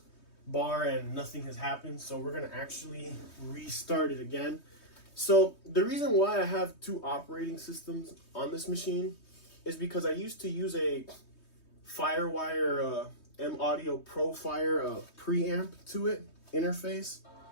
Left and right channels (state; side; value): late; right; 3.2 ms